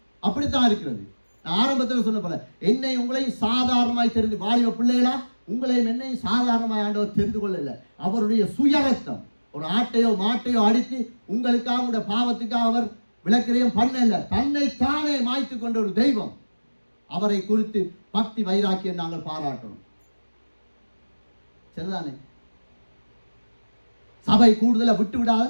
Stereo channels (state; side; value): inverted; both; correlation -1.00